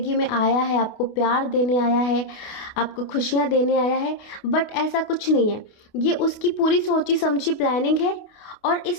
में आया है, आपको प्यार देने आया है, आपको खुशियाँ देने आया है, बट ऐसा कुछ नहीं है। ये उसकी पूरी सोची समझी प्लानिंग है, और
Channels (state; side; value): late; right; 28 ms